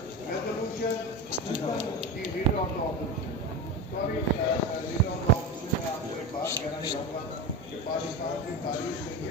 Leader of the opposition leader of the opposition में आपको एक बात कहना चाहूँगा कि पाकिस्तान की तारीख में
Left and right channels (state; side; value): normal; both; correlation 0.22